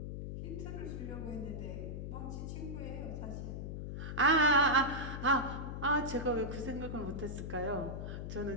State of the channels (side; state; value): left; noise; hum, 5 dB below the sound